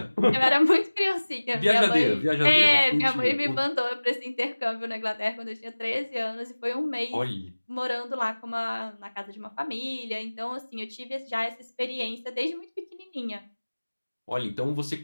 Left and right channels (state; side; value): inverted; both; correlation -1.00